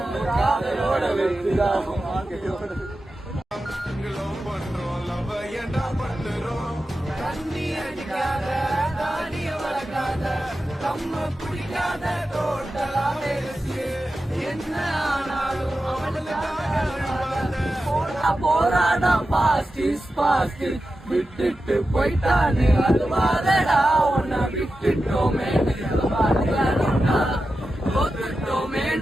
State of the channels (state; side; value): normal; both; correlation 0.92